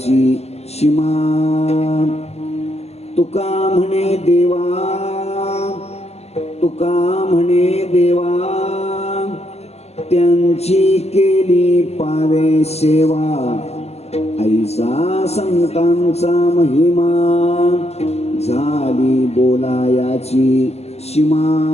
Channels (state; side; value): late; right; 0.30 ms